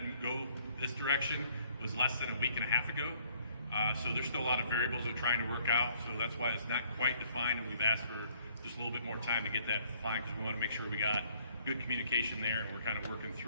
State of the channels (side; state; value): both; inverted; correlation -0.62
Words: go this direction was less than a week and a half ago. So there's still a lot of variables we're trying to work out, so that's why it's not quite defined, and we've asked for just a little bit more time to get that defined because we want to make sure we got good communication there and we're kind of working